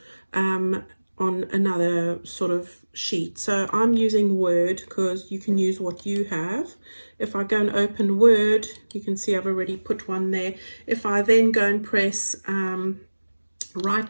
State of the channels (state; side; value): inverted; both; correlation -1.00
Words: on another sort of sheet. So I'm using Word because you can use what you have. If I go and open Word, you can see I've already put one there. If I then go and press